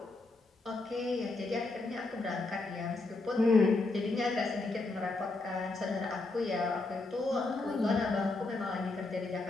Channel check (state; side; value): quieter; right; 3.3 dB